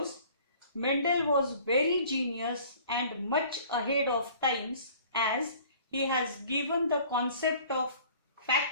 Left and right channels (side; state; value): both; inverted; correlation -0.50